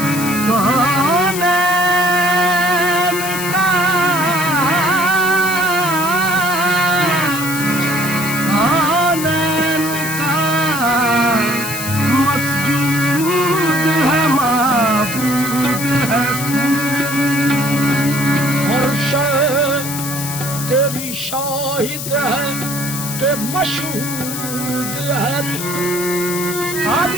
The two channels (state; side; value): noise; left; hiss, 6 dB below the sound